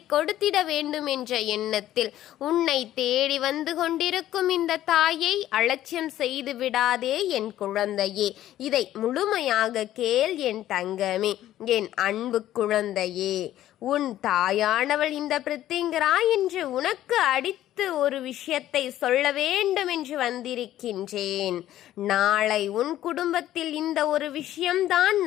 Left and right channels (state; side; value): quieter; right; 13.1 dB